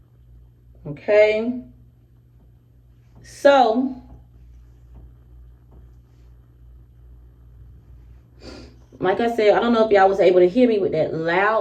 Okay. So, like I said, I don't know if y'all was able to hear me with that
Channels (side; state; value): both; identical; correlation 1.00